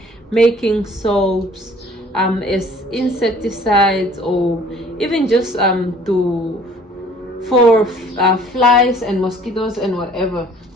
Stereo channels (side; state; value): both; normal; correlation 0.54